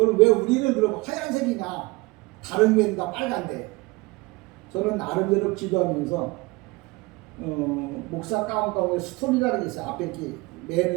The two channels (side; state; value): left; quieter; 23.5 dB